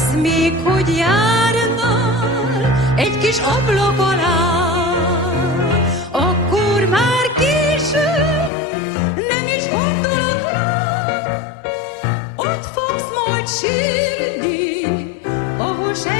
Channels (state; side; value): drops out; right; at 8.5 s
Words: még, hogy járnál egy kis ablak alá. Akkor már késő, nem is gondolok rád. Ott fogsz majd sírni, ahol